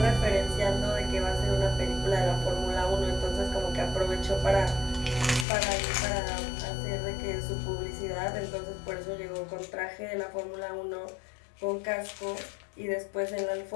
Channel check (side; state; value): right; drops out; at 5.5 s